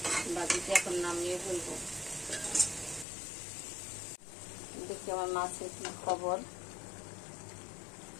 ভাজিটা এখন নামিয়ে ফেলবো। দেখি আমার মাছের কি খবর।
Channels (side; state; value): right; drops out; at 3.1 s